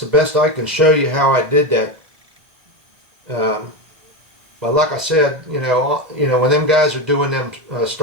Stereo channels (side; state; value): left; late; 2.0 ms